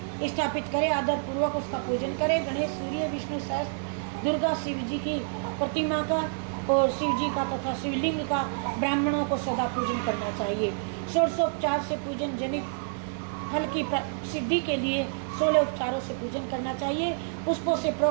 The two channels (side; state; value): left; silent; digital silence